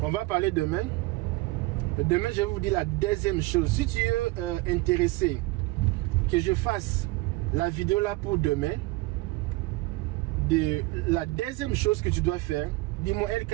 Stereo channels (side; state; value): left; quieter; 21.5 dB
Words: va parler demain. Demain, je vais vous dire la deuxième chose. Si tu es intéressé que je fasse la vidéo là pour demain, la deuxième chose que tu dois faire, dis-moi